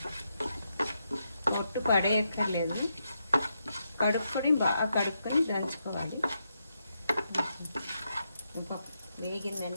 పొట్టు పడేయక్కర్లేదు. కడుక్కొని బాగా కడుక్కొని దంచుకోవాలి.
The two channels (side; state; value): both; inverted; correlation -0.83